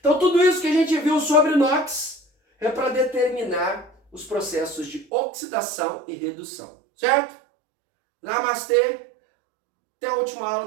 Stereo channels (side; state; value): left; drops out; at 5.1 s